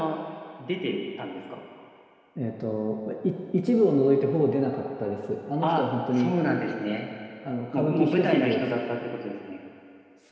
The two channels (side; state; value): both; identical; correlation 1.00